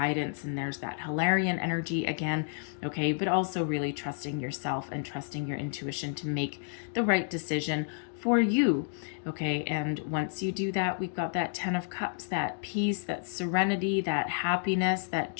And there's that Hilarion energy again, okay? But also really trusting yourself and trusting your intuition to make the right decision for you, okay? And once you do that, we've got that 10 of Cups, that peace, that serenity, that happiness, that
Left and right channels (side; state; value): right; silent; digital silence